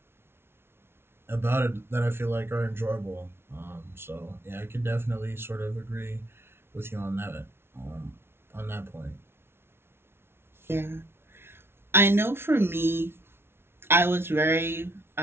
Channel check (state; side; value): late; left; 0.12 ms